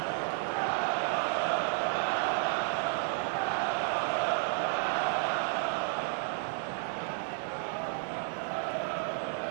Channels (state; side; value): silent; left; 56 dB below the other